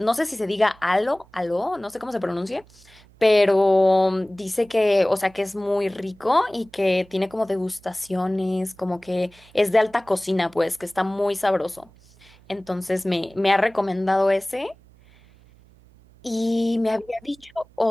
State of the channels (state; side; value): noise; right; hum, 28 dB below the sound